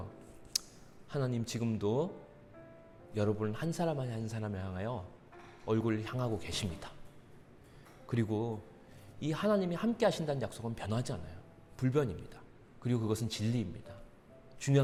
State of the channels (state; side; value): identical; both; correlation 1.00